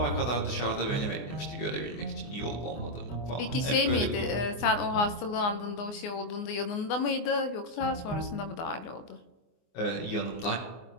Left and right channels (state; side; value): late; right; 24 ms